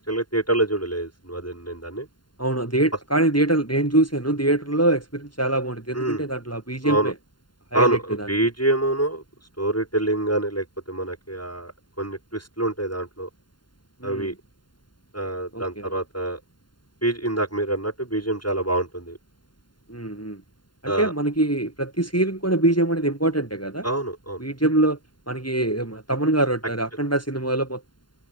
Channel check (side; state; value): right; late; 0.71 ms